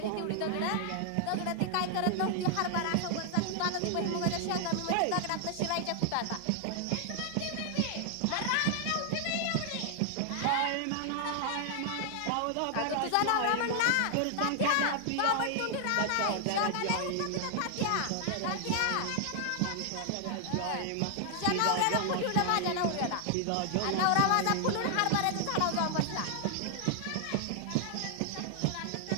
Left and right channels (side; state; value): both; different; correlation 0.00